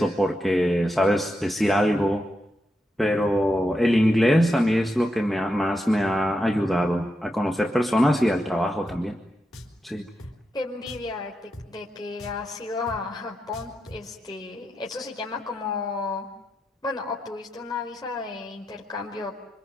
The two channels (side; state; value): both; normal; correlation 0.86